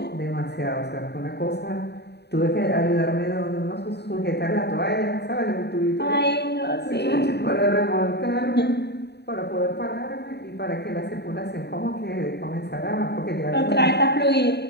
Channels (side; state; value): right; late; 0.48 ms